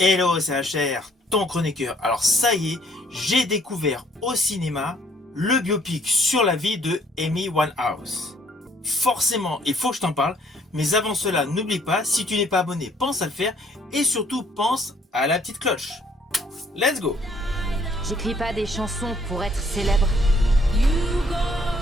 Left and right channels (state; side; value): normal; both; correlation 0.63